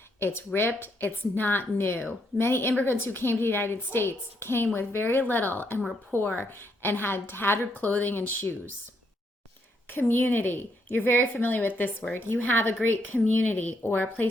it's ripped, it's not new. Many immigrants who came to the United States came with very little and were poor and had tattered clothing and shoes. Community. You're very familiar with this word. You have a great community or a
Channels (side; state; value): both; normal; correlation 0.75